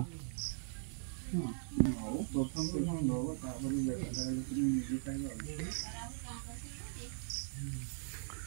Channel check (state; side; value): silent; left; digital silence